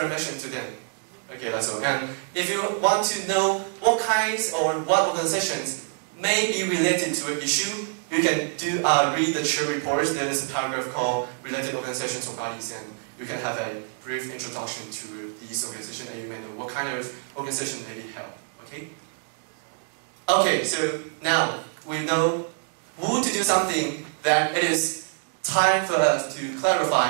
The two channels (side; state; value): left; silent; digital silence